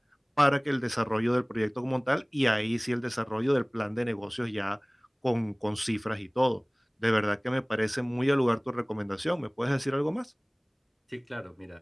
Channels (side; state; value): both; identical; correlation 1.00